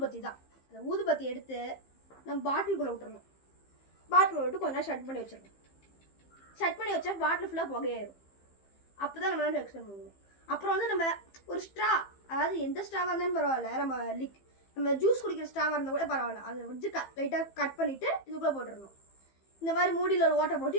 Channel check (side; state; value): right; late; 15 ms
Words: தான். அந்த ஊதுபத்தி எடுத்து நம்ம பாட்டிலுக்குள்ள விட்டுறணும். பாட்டில் விட்டு கொஞ்ச நேரம் ஷட் பண்ணி வச்சிடணும். ஷட் பண்ணி வச்சா பாட்டில் ஃபுல்லாக புகையாயிரும். அப்போ தான் நம்மளால எக்ஸ்பிளைன் பண்ணுவோம். அப்புறம் வந்து நம்ம ஒரு ஸ்ட்ரா, அதாவது எந்த ஸ்ட்ராவாக இருந்தாலும் பரவாயில்ல, நம்ம ஜூஸ் குடிக்கிற ஸ்ட்ராவாக இருந்தால் கூட பரவாயில்ல, அதை வச்சு லைட்டாக கட் பண்ணிவிட்டு இதுக்குள்ளே போட்டுடணும். இந்த மாதிரி மூடியில் ஒரு ஓட்டை